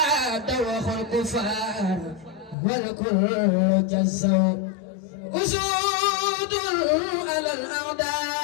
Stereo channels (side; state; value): right; drops out; at 2.6 s